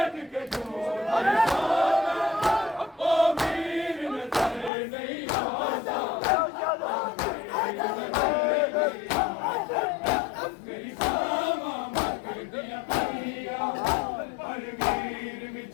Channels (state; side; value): drops out; right; at 4.7 s